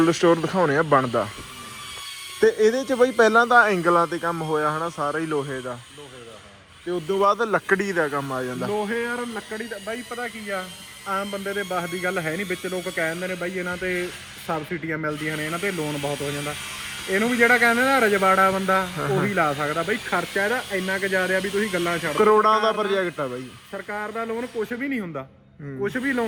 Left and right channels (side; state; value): both; identical; correlation 1.00